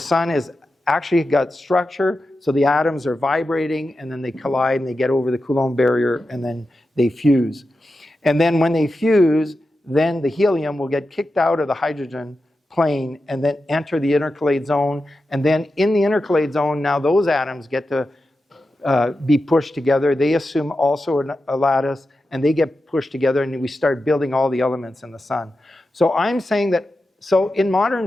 is actually got structure, so the atoms are vibrating, and then they collide and they get over the Coulomb barrier, and then they fuse. And then when they fuse, then the helium will get kicked out of the hydrogen plane and then enter the intercalate zone. And then in the intercalate zone, now those atoms get to be pushed together. They assume also a lattice, and they get pushed together, and we start building all the elements in the sun. So I'm saying that, so in modern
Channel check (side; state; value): both; normal; correlation 0.91